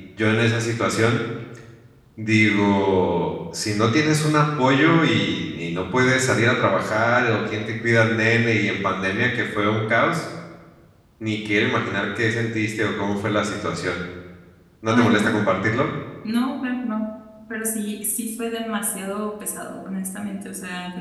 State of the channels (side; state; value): both; identical; correlation 1.00